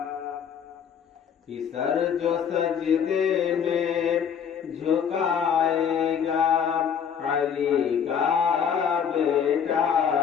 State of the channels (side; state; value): right; quieter; 7.6 dB